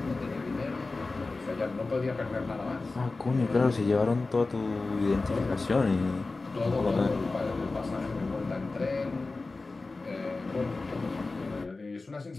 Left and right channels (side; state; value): right; quieter; 3.6 dB